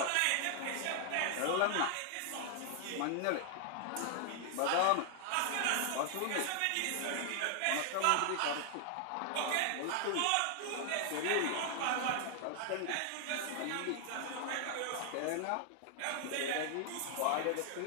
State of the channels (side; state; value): both; different; correlation 0.00